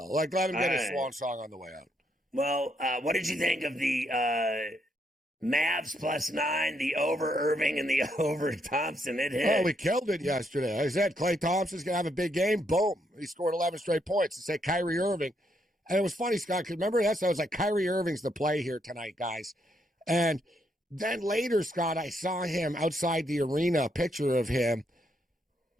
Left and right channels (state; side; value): normal; both; correlation 0.75